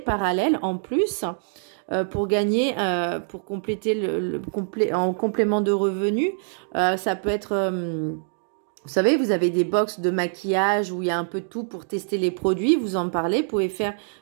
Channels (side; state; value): left; silent; digital silence